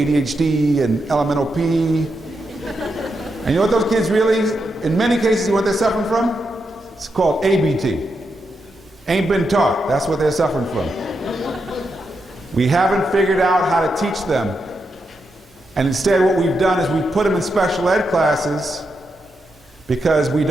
and LMNOP. And you know what those kids really, in many cases, what they're suffering from? It's called ABT. Ain't been taught. That's what they're suffering from. We haven't figured out how to teach them And instead what we've done is we've put them in special ed classes because we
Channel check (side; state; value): both; normal; correlation 0.84